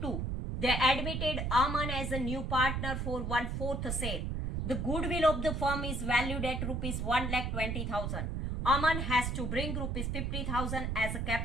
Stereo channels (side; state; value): right; noise; rumble, 2 dB below the sound